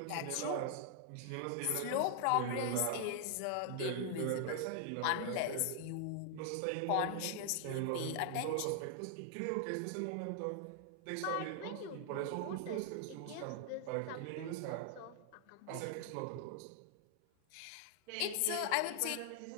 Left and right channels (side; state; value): both; different; correlation 0.00